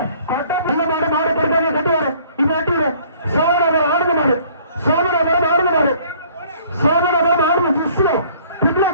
மாடு கட்டி வர இது வட்டி வர சோதனை ஆடுங்க மாடு, சோதனை ஆடுங்க மாடு, சோதனை ஆடுங்க ஜிஸ்லோ பிப்ல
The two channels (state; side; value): inverted; both; correlation -0.56